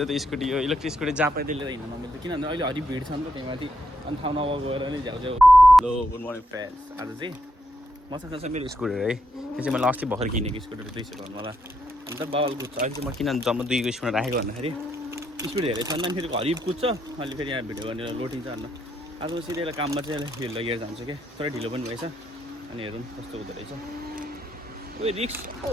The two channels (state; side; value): normal; both; correlation 0.79